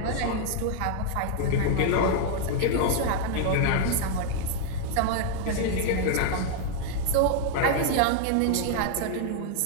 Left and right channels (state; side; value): different; both; correlation 0.00